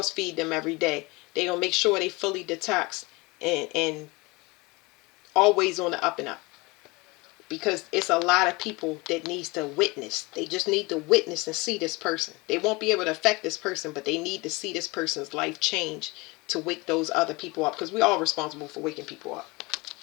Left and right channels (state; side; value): quieter; right; 24.6 dB